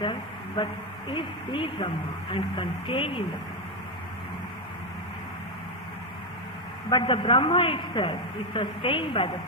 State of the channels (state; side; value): normal; both; correlation 0.06